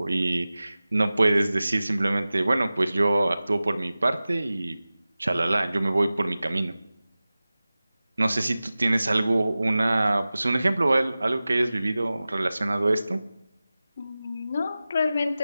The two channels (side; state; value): both; inverted; correlation -0.96